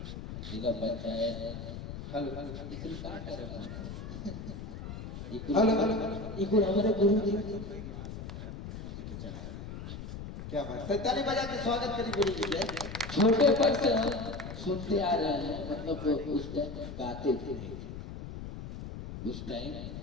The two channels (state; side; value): noise; left; rumble, 9 dB below the sound